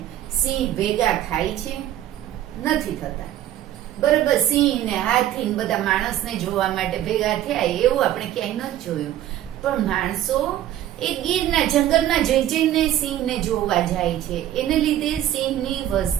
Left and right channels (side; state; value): left; quieter; 12.3 dB